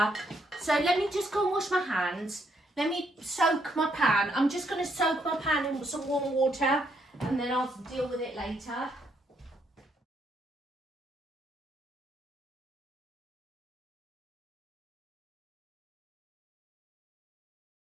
so let me just go and wash my hands. Let me soak my pan. I'm just going to soak my pan in some warm water, and then I'll deal with it later.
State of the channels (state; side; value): normal; both; correlation 0.74